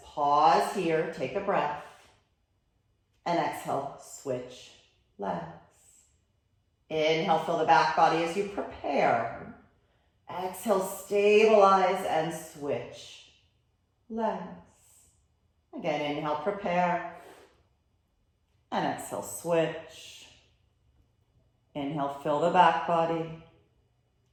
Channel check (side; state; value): both; identical; correlation 1.00